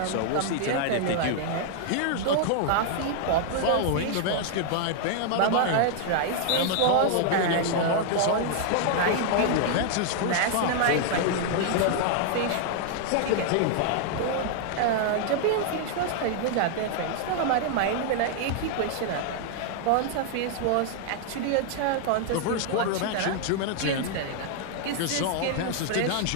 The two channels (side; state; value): both; different; correlation 0.00